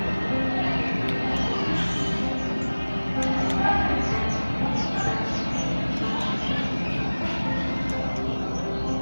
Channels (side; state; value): both; inverted; correlation -1.00